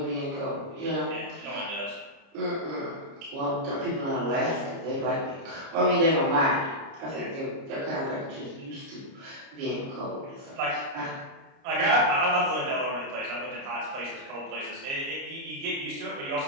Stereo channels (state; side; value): late; left; 29 ms